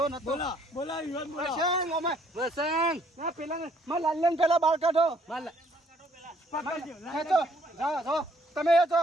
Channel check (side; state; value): both; normal; correlation 0.64